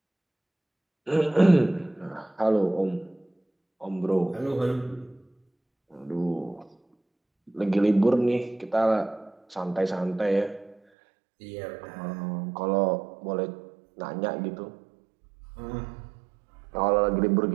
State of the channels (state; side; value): drops out; left; at 10.8 s